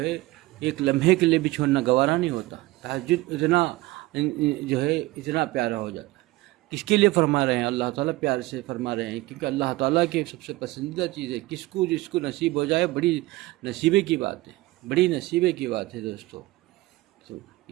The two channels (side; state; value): left; quieter; 19.5 dB